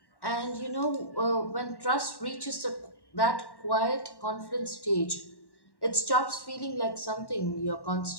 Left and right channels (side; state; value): right; late; 1.1 ms